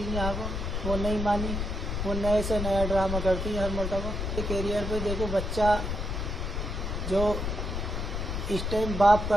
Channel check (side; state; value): left; noise; rumble, 2 dB below the sound